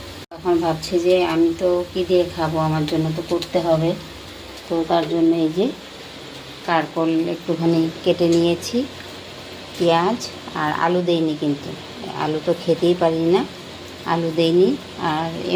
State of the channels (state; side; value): identical; both; correlation 1.00